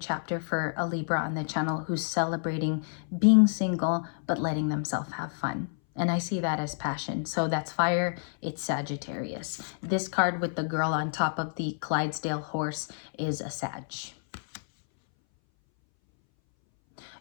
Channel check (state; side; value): silent; right; 58 dB below the other